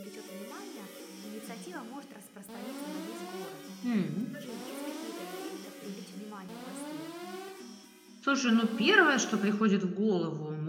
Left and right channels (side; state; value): both; identical; correlation 1.00